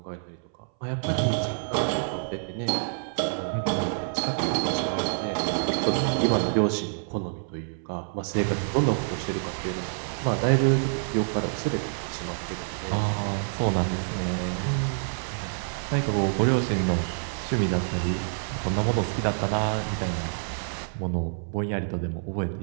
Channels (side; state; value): left; silent; 60 dB below the other